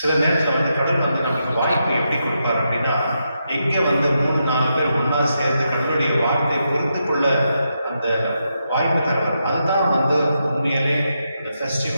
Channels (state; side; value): inverted; both; correlation -0.84